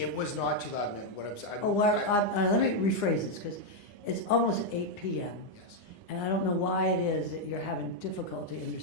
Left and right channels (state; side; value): late; right; 9.8 ms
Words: It was not too loud, ma'am. What Let me rephrase this, because it's almost 8 p.m. Yes. And I don't know why it is that you're having difficulty